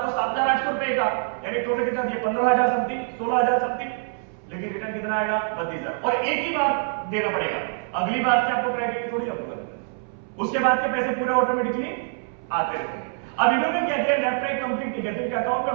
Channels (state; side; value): silent; left; 62 dB below the other